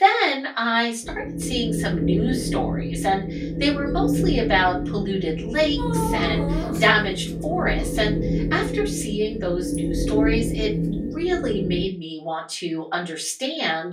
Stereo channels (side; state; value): both; identical; correlation 1.00